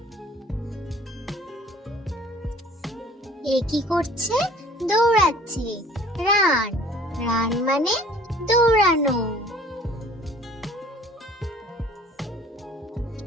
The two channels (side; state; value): both; normal; correlation 0.51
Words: এ কি করছে? দৌড়াচ্ছে। রান, রান মানে দৌড়ানো।